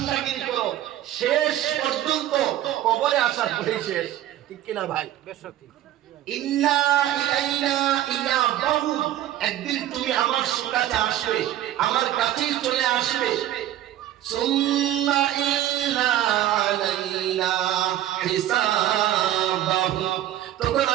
করো, শেষ পর্যন্ত কবরে আসার পরে শেষ। ঠিক কিনা ভাই? ইন্না ইলাইনা ইয়াবাহুম। একদিন তুমি আমার কাছে আসবে, আমার কাছেই চলে আসবে। সুম্মা ইন্না আলাইনা হিসাবাহুম। তখন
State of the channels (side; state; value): left; quieter; 12.9 dB